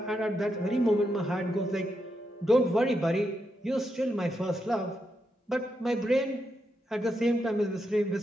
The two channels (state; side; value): normal; both; correlation 0.83